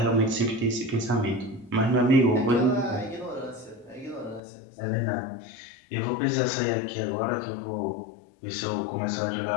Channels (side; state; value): right; drops out; at 4.4 s